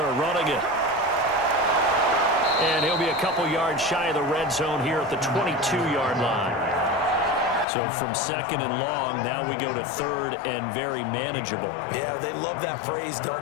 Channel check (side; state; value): right; drops out; at 7.7 s